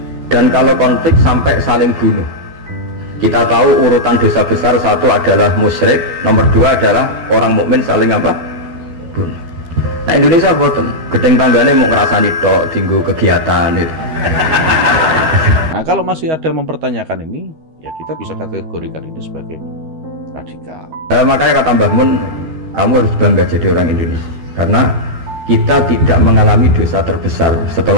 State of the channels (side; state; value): left; late; 13 ms